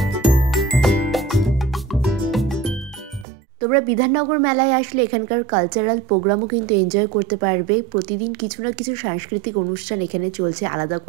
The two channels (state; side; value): drops out; left; at 3.2 s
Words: তোমরা বিধাননগর মেলায় আসলে এখানকার কালচারাল প্রোগ্রামও কিন্তু এনজয় করতে পারবে। প্রতিদিন কিছু না কিছু সাংস্কৃতিক অনুষ্ঠান এখানে চলছে, আলাদা